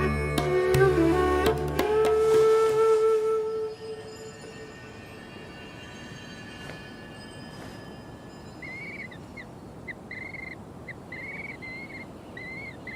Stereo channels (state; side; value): identical; both; correlation 1.00